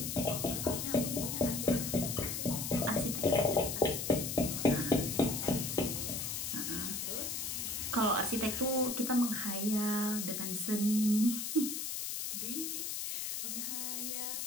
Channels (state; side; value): noise; left; hiss, 3 dB below the sound